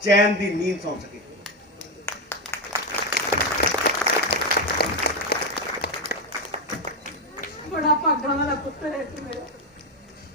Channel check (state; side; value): normal; both; correlation 0.08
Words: ਚੈਨ ਦੀ ਨੀਂਦ ਸੌਂ ਸਕੇ। ਬੜਾ ਭਾਗਾਂ ਵਾਲਾ ਪੁੱਤਰ ਹੈ ਤੂੰ ਮੇਰਾ।